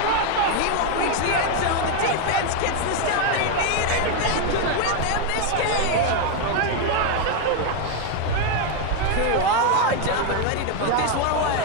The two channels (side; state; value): both; different; correlation 0.01